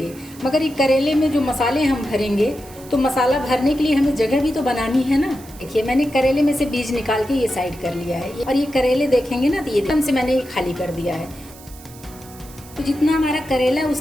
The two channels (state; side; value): noise; right; hiss, 20 dB below the sound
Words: मगर ये करेले में जो मसाले हम भरेंगे तो मसाला भरने के लिए हमें जगह भी तो बनानी है ना। देखिए, मैंने करेले में से बीज निकाल के ये साइड कर लिया है और ये करेले देखेंगे ना, तो ये एकदम से मैंने ये खाली कर दिया है। तो जितना हमारा करेला है